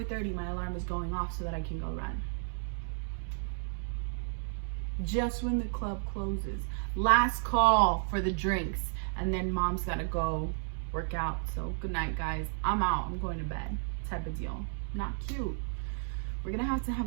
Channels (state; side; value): silent; left; digital silence